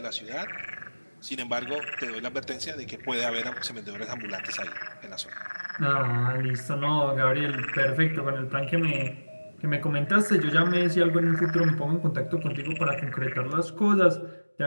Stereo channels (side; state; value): both; inverted; correlation -1.00